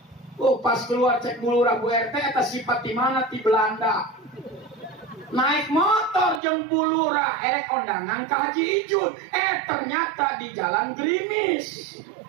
Oh pas keluar cek Bu Lurah Bu RT, eta sifat di mana? Di Belanda. Naik motor jeung Bu Lurah erek kondangan ke Haji Ijun, ternyata di Jalan Gerimis.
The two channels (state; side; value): drops out; left; at 6.4 s